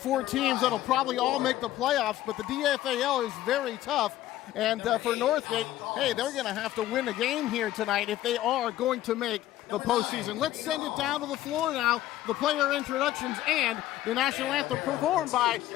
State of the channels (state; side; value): quieter; right; 14.1 dB